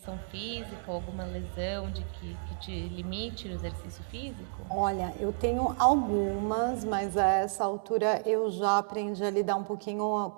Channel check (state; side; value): silent; left; 57 dB below the other